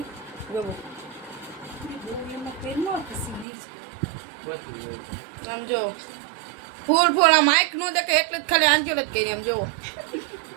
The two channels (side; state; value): left; drops out; at 3.5 s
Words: જો આમ જો ફૂલ આ માઇક નો દેખે એટલે જ ખાલી આંચલ જ કરી આમ જો